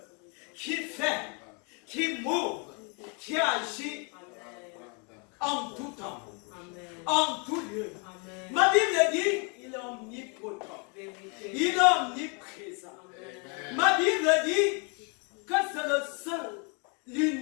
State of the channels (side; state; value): right; quieter; 35.2 dB